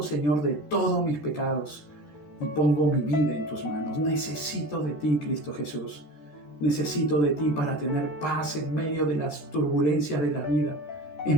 Señor, de todos mis pecados y pongo mi vida en tus manos. Necesito de ti, Cristo Jesús. Necesito de ti para tener paz en medio de las turbulencias de la vida.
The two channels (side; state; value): right; late; 13 ms